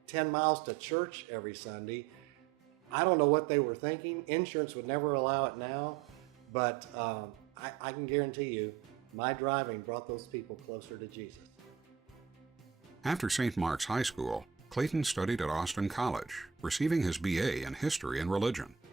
10 miles to church every Sunday? I don't know what they were thinking. Insurance would never allow it now, but I can guarantee you, my driving brought those people closer to Jesus. After St. Mark's High School, Clayton studied at Austin College, receiving his B.A. in History and Religion.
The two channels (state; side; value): quieter; left; 7.8 dB